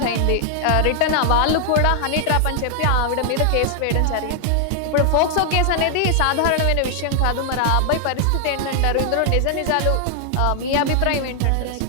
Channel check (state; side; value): different; both; correlation 0.00